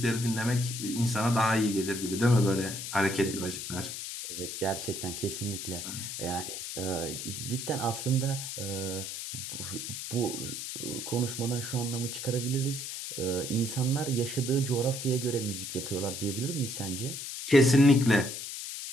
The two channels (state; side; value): noise; left; hiss, 6 dB below the sound